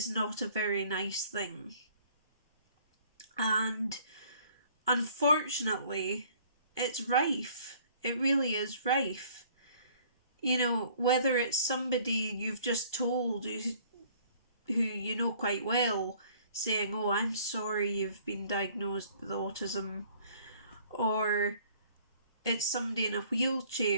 not a very nice thing. And unfortunately, it's rife. It really is rife. You know, whether it's somebody you've just told who you know quite well, saying, oh, I'm sorry you've been diagnosed with autism, or it's somebody in a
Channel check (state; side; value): inverted; both; correlation -0.56